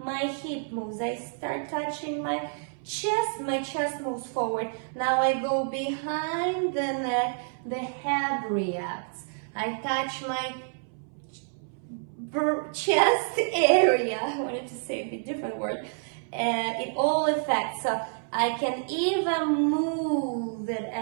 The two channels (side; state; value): left; silent; 59 dB below the other